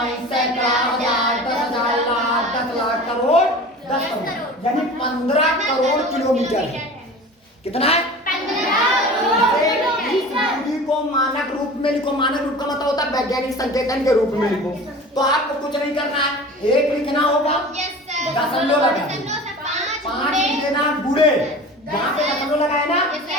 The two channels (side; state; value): both; normal; correlation 0.38